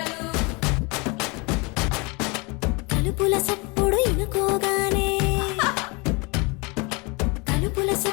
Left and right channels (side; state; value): right; quieter; 28.5 dB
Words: తలుపుల సప్పుడు ఇనుకోగానే